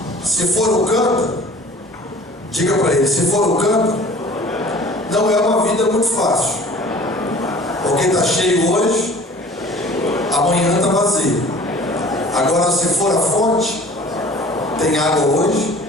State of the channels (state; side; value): normal; both; correlation 0.47